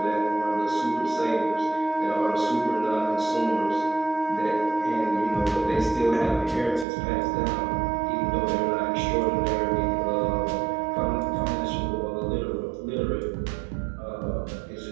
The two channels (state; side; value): drops out; left; at 6.9 s